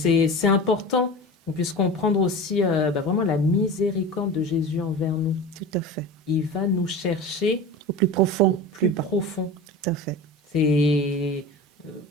important qu'on puisse comprendre aussi vraiment la miséricorde de Jésus envers nous. Tout à fait. Il va nous chercher Au plus profond. plus profond. Tout à fait. C'est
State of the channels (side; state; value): both; normal; correlation 0.31